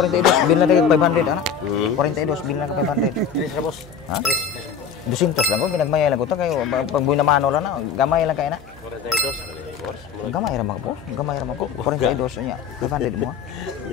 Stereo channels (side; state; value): right; quieter; 6.8 dB